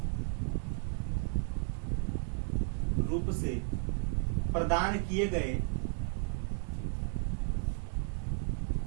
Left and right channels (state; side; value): silent; left; 55 dB below the other